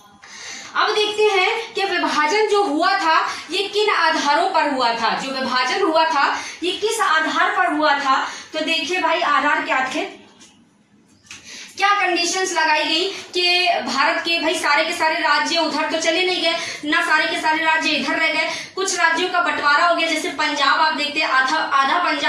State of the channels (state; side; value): identical; both; correlation 1.00